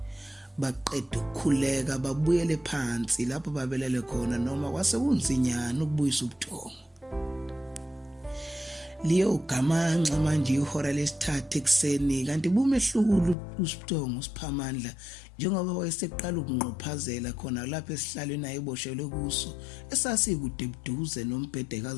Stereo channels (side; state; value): right; drops out; at 13.4 s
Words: Baqeda ukukhuleka babuyele phansi lapho babelele khona noma kwase kunzinyana ukubuyisa ubuthongo. Liyo gamanxa manje ihora lesithathu ekseni kanti bumehlukulu uSiphthongo uSiphamandla njengoba wayeseqala ukunqophazela khona lapha esihlalweni ayeboshelwe kuso esasikude buduze nombhede